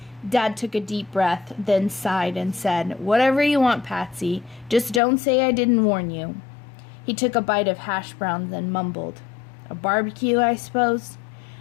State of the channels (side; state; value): right; drops out; at 5.0 s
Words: Dad took a deep breath, then sighed and said, "Whatever you want, Patsy. Just don't say I didn't warn you." He took a bite of hash browns and mumbled, "A barbecue, I suppose?"